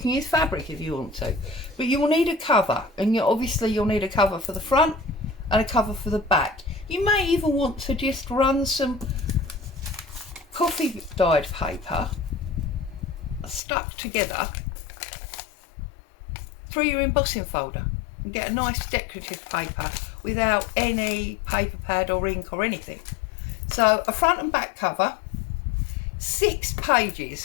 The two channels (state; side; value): drops out; right; at 13.6 s